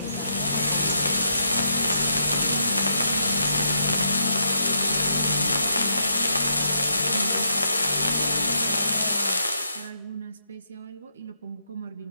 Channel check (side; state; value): both; inverted; correlation -0.78